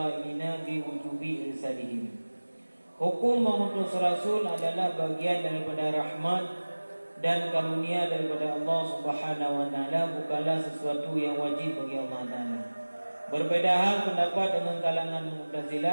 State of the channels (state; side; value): inverted; both; correlation -1.00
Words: bi wujubi irsalihim. Hukum mengutus Rasul adalah bagian daripada rahmat dan karunia daripada Allah Subhanahu wa taala, bukanlah sesuatu yang wajib bagi Allah Taala. Berbeda hal pendapat dengan kalangan